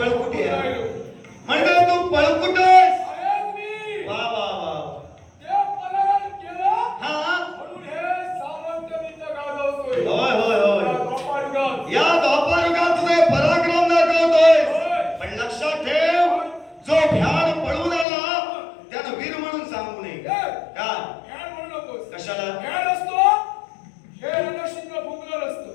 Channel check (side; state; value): right; drops out; at 18.1 s